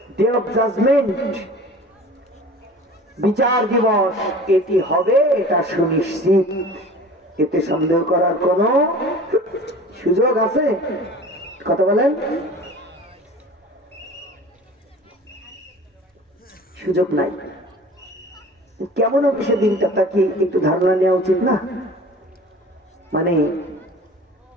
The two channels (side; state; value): both; normal; correlation 0.41